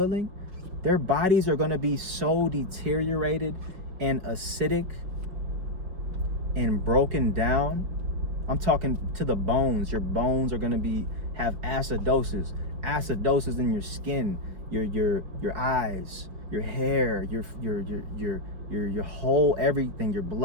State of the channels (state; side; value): late; left; 5.4 ms